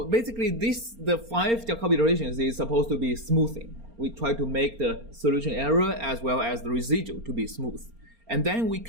basically the 5 Jacobi iterations is supposed to be smoothing. We try to make the solution error as well as the residual to be smooth. And then we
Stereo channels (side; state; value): left; late; 4.3 ms